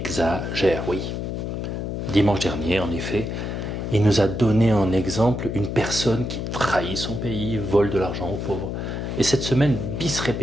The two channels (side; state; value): left; noise; hum, 4 dB below the sound